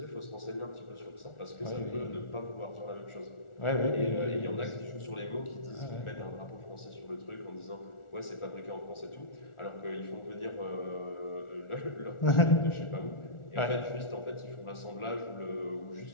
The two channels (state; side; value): late; right; 1.4 ms